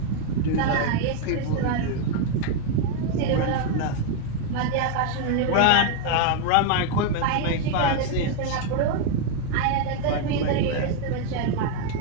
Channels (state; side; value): different; both; correlation 0.01